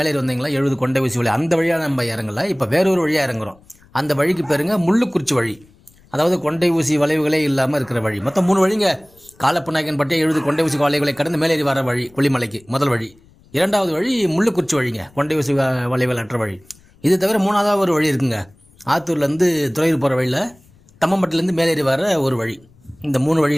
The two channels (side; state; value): left; noise; rumble, 29 dB below the sound